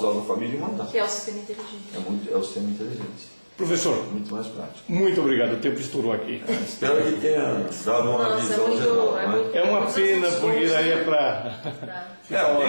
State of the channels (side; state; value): both; inverted; correlation -1.00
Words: dados da família e mandar. Que é o sistema inteligente. É o sistema inteligente. Professor, muito mais prático. Muito obrigado, o tempo estourou aqui. Espero que tenha dado uma visão geral. É uma pena, porque daí é para...